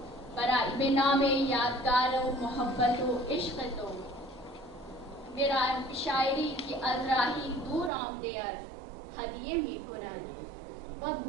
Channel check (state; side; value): drops out; left; at 7.9 s